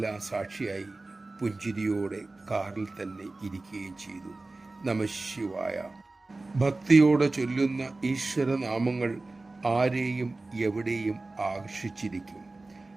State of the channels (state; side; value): quieter; left; 3.2 dB